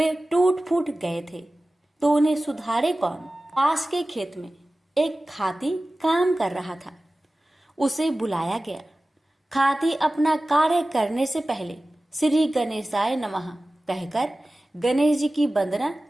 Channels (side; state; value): both; normal; correlation 0.96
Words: टूट फूट गए थे, तो उन्हें सुधारे कौन। पास के खेत में एक खाती काम कर रहा था। उसे बुलाया गया। खाती अपना कार्य करने से पहले श्री गणेशाय नमः कहकर गणेश जी की वंदना